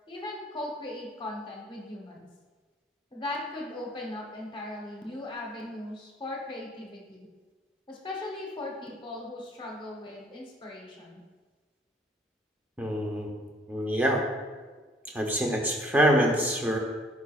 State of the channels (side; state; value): both; normal; correlation 0.58